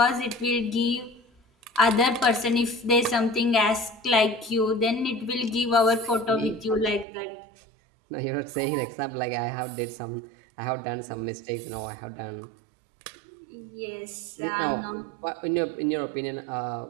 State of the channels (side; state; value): left; drops out; at 7.1 s